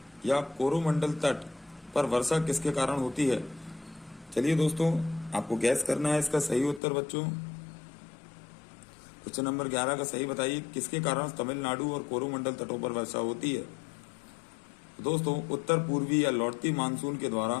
या कोरोमंडल तट पर वर्षा किसके कारण होती है? चलिए दोस्तों, आपको गैस करना है इसका सही उत्तर बच्चों। क्वेश्चन नंबर 11 का सही बताइए, किसके कारण तमिलनाडु और कोरोमंडल तटों पर वर्षा होती है? दोस्तों, उत्तर पूर्वी या लौटती मानसून के द्वारा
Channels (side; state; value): right; drops out; at 6.8 s